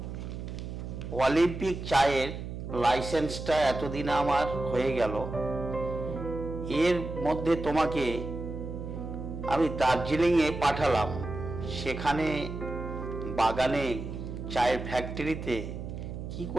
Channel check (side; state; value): right; noise; hum, 7 dB below the sound